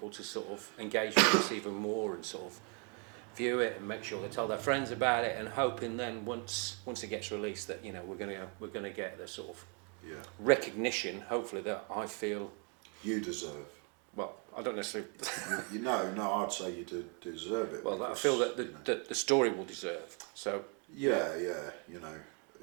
to sort of engage with us even more and sort of view it and make sure they tell their friends about it, and hoping then once it gets released that, you know, we're gonna get the sort of recognition, hopefully, that I feel you deserve. Well, I don't necessarily. you know, no, I'd say you deserve it. Well, because, I feel that the story will deserve. So yeah, you know,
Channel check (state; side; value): quieter; left; 37.2 dB